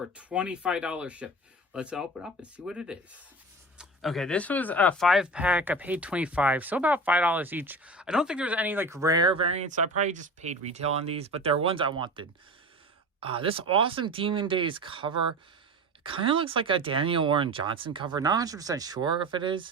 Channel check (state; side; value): normal; both; correlation 0.31